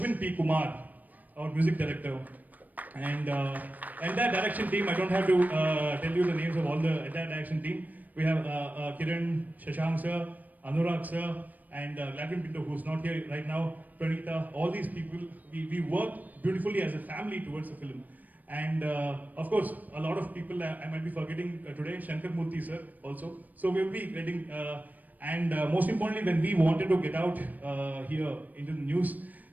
P. Kumar, our music director. And entire direction team, I don't have to tell you the names of all the entire direction team. We have Kiran, Shashank sir, Anurag sir, and Gladwin Pinto, who's not here right now, Pranita, all these people, we work beautifully as a family towards the film. And of course, a lot of people I might be forgetting today, Shankar Murthy sir also. So we'll be getting, and most importantly, when we wanted to get out here into the news,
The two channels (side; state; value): left; late; 0.081 ms